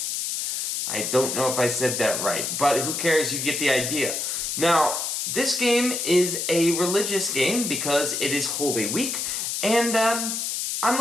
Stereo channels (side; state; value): left; noise; hiss, 2 dB below the sound